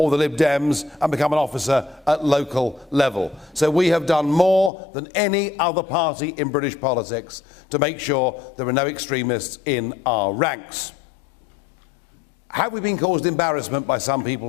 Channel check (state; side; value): drops out; right; at 4.7 s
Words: the Lib Dems and become an officer at local level. So we have done more than any other party in British politics to make sure there are no extremists in our ranks. Have we been caused embarrassment by some